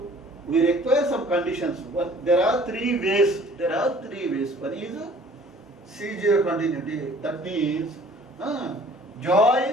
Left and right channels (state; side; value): normal; both; correlation 0.52